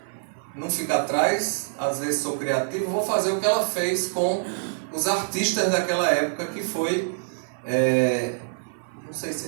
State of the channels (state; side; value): silent; left; 56 dB below the other